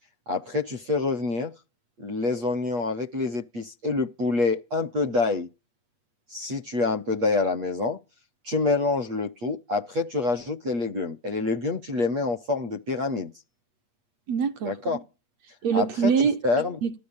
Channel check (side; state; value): left; late; 8.4 ms